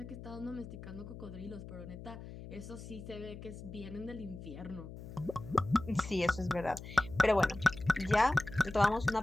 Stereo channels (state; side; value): noise; left; hum, 12 dB below the sound